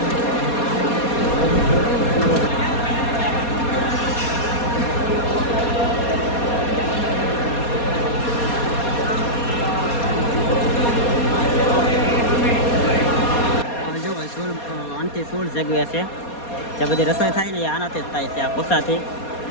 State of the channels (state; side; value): late; right; 4.2 ms